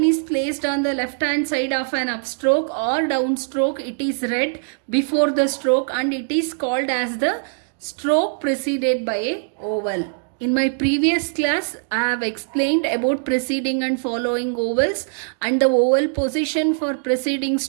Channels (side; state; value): left; silent; digital silence